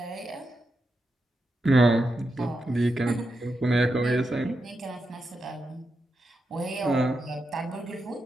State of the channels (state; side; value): normal; both; correlation 0.87